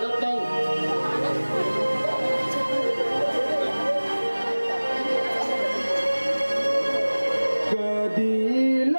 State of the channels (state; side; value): inverted; both; correlation -1.00